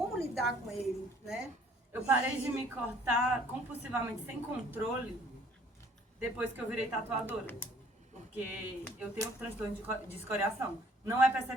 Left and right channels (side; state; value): both; normal; correlation 0.58